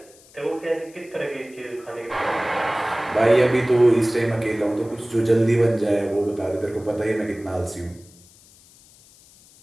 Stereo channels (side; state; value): left; noise; hiss, 26 dB below the sound